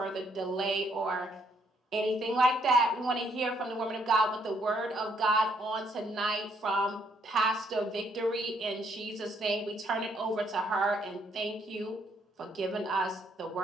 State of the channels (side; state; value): both; normal; correlation 0.70